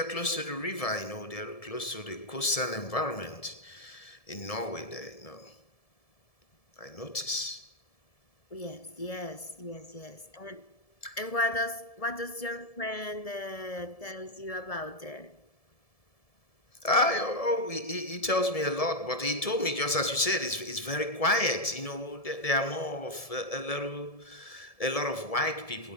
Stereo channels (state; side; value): late; right; 1.7 ms